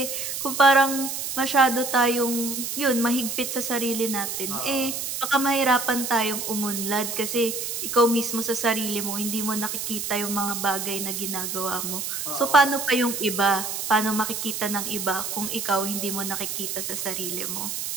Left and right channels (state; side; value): noise; right; hiss, 4 dB below the sound